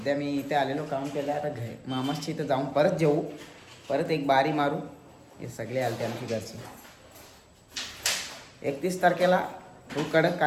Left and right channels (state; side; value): identical; both; correlation 1.00